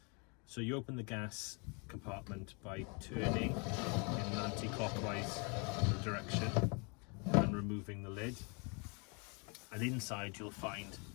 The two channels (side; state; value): right; quieter; 33.5 dB